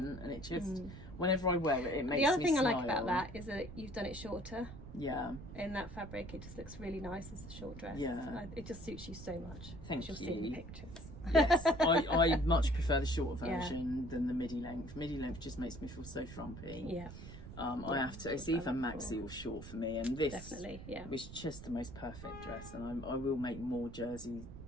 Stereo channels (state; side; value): noise; right; rumble, 13 dB below the sound